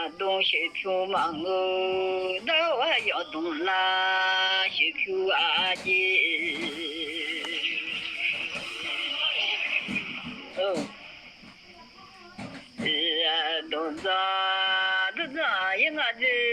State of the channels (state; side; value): identical; both; correlation 1.00